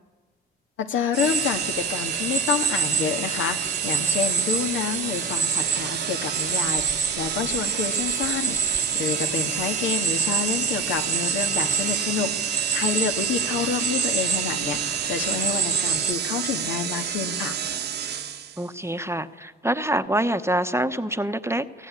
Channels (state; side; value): normal; both; correlation 0.29